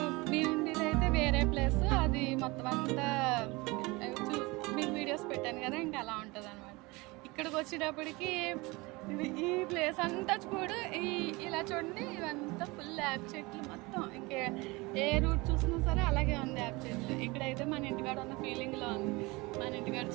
నేను ఉండేది అయితే వేరే ప్లేస్, అది మొత్తం అంతా మీకు వీడియోస్ పెట్టాను కదా, ఇంకా అలా ఉంటుంది అనమాట. ఇక్కడికి వచ్చేటప్పటికి ఈ ప్లేస్ అంతా చూడు, ఇలా చూడండి, ఇవంతా ఫుల్ యాప్ చెట్లు మొత్తం. ఇంకా ఏ రూట్ చూసినా సరే అలాగే ఉంది యాప్ చెట్లు. ఇక్కడైతే మన ఇంటికాడ ఉన్న ఫీలింగ్లో ఉంది, మన ఇంటికాడ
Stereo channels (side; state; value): left; quieter; 24.1 dB